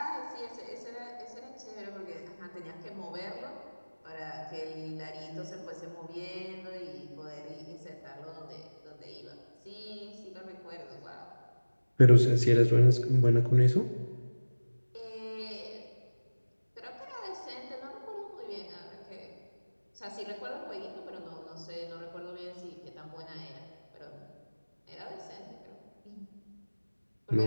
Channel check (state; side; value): inverted; both; correlation -1.00